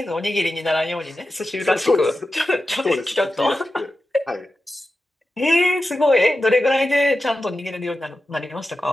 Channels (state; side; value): normal; both; correlation 0.91